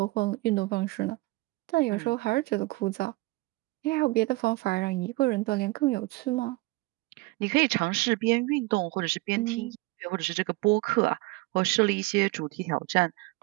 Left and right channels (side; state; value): left; quieter; 22.0 dB